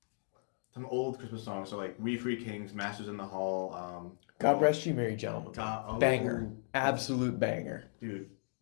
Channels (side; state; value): right; silent; digital silence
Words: some old Christmas songs. So like We Three Kings, Masters in the Hall. God Rest You Merry Gentlemen. Banger, absolute banger, dude.